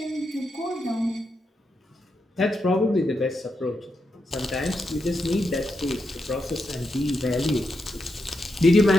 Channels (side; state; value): both; normal; correlation 0.84